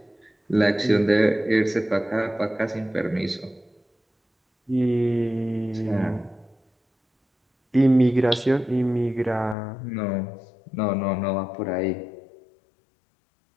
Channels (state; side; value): drops out; right; at 9.6 s